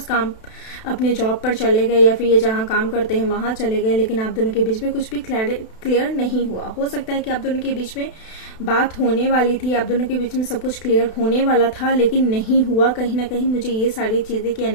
काम अपने जॉब पर चले गए, या फिर ये जहां काम करते हैं वहां चले गए, लेकिन आप दोनों के बीच में कुछ भी क्लियर नहीं हुआ। हो सकता है कि आप दोनों के बीच में बात होने वाली थी, आप दोनों के बीच में सब कुछ क्लियर होने वाला था, लेकिन नहीं हुआ। कहीं ना कहीं मुझे ये सारी चीजें की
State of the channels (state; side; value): late; right; 32 ms